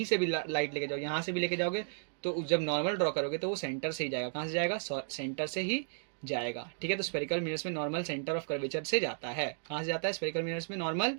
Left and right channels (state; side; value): silent; left; digital silence